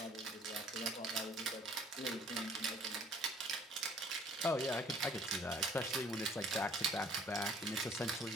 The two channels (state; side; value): normal; both; correlation 0.57